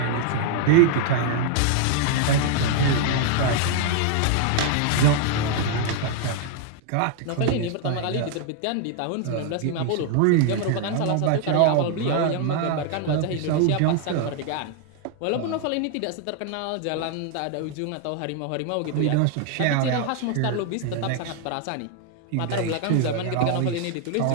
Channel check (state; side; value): different; both; correlation 0.00